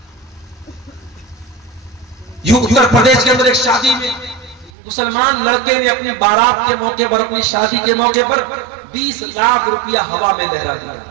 یوں اتر پردیش کے اندر ایک شادی میں مسلمان لڑکے نے اپنی بارات کے موقع پر، اپنی شادی کے موقع پر 20 لاکھ روپیہ ہوا میں لہرا دیا.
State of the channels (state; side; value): drops out; left; at 4.7 s